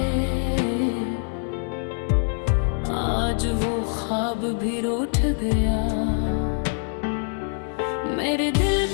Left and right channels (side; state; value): right; silent; 62 dB below the other